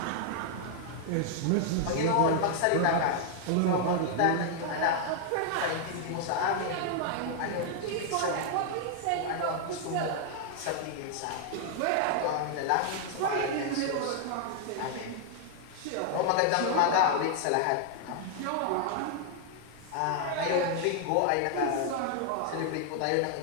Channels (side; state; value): both; different; correlation 0.00